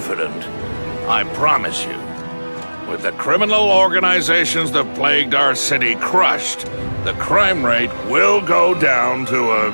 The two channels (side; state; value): both; inverted; correlation -1.00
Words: I promise you, with the criminal organizations that plagued our city crushed, the crime rate will go down to a